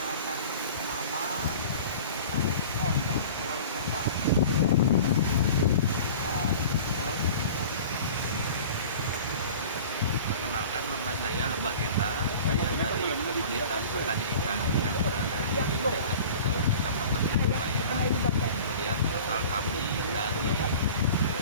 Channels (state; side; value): inverted; both; correlation -0.41